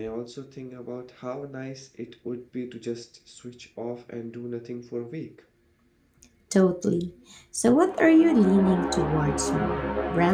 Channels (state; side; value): identical; both; correlation 1.00